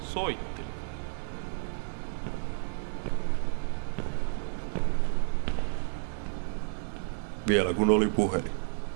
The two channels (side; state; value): left; silent; digital silence